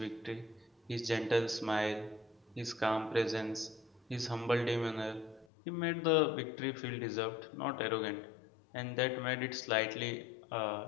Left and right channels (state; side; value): drops out; right; at 5.5 s